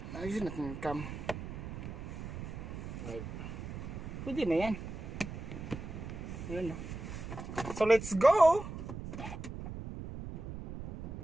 Ayun natin yung cam. Right. Pwede na yan. Ayun na. So, let's go!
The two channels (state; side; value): noise; right; rumble, 8 dB below the sound